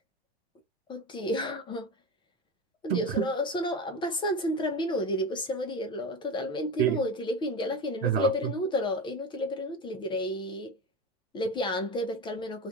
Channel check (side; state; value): both; normal; correlation 0.23